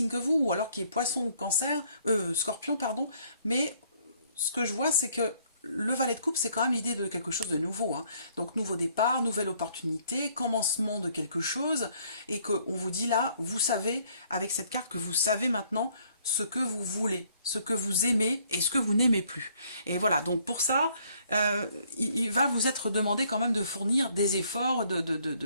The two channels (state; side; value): inverted; both; correlation -0.65